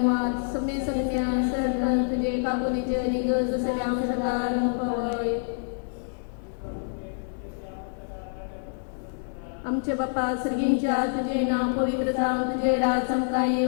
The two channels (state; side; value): silent; right; 60 dB below the other